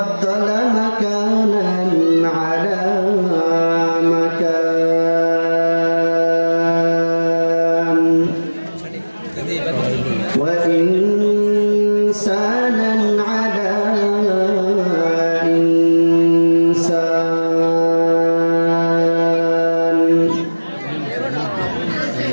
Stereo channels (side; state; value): both; inverted; correlation -1.00